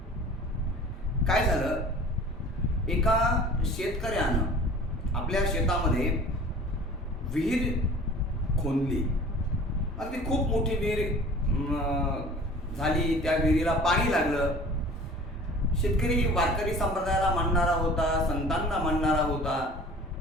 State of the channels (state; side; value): normal; both; correlation 0.45